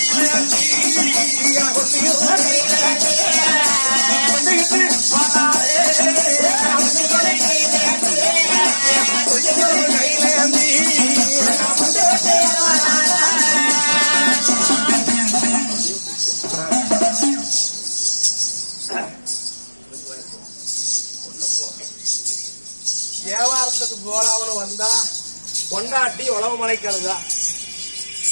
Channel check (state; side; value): inverted; both; correlation -1.00